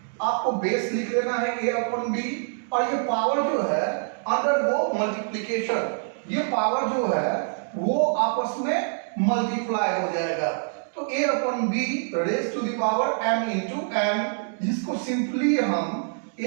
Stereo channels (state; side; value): silent; left; digital silence